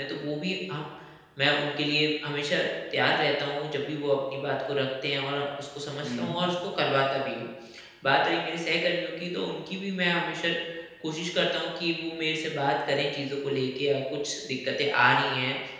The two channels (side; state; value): both; identical; correlation 1.00